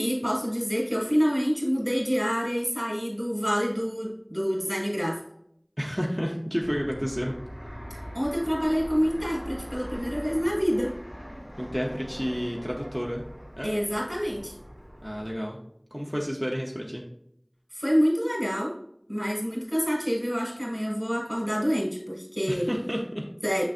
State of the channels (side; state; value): both; identical; correlation 1.00